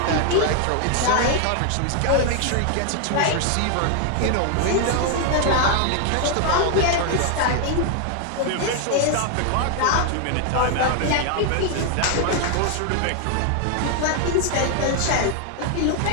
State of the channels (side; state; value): both; different; correlation 0.00